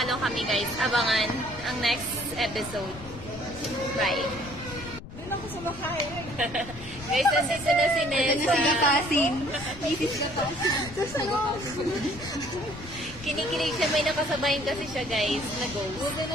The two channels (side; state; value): left; noise; rumble, 14 dB below the sound